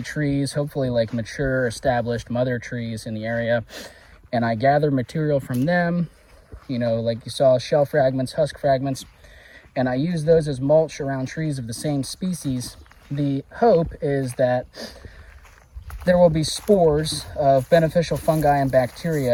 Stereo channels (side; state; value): both; identical; correlation 1.00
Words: trees, hopefully like mature, established mother trees in the area, and I gather material from them, you know, like you saw, shell fragments, husk fragments, and I use those as mulch around trees of the same species, the hope is that there will be spores of beneficial fungi and